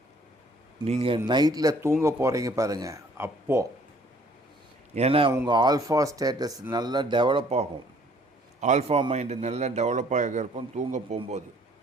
நீங்கள் நைட்டில் தூங்க போகிறீங்க பாருங்கள், அப்போது. ஏன்னா உங்கள் ஆல்ஃபா ஸ்டேட்டஸ் நல்லா டெவலப் ஆகும், ஆல்ஃபா மைண்டு நல்லா டெவலப் ஆக இருக்கும். தூங்க போகும்போது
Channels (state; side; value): normal; both; correlation 0.59